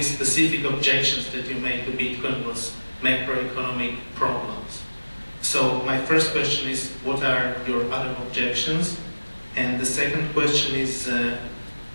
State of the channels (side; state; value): both; inverted; correlation -1.00